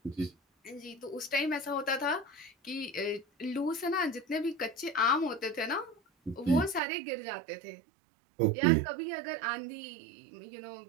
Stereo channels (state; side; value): drops out; left; at 6.8 s